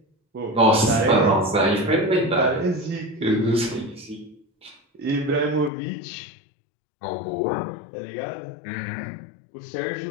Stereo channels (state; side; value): drops out; right; at 5.7 s